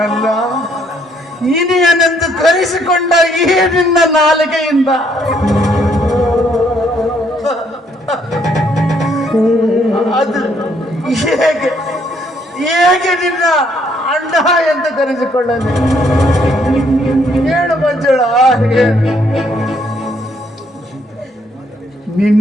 ಇನಿಯನೆಂದು ಕರೆಸಿಕೊಂಡ ಈ ನಿನ್ನ ನಾಲಿಗೆಯಿಂದ ಅದು ಹೇಗೆ ನಿನ್ನ ಅಣ್ಣ ಎಂದು ಕರೆಸಿಕೊಳ್ಳಲಿ? ಹೇಳು ಮಂಜುಳಾ,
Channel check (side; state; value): both; normal; correlation 0.68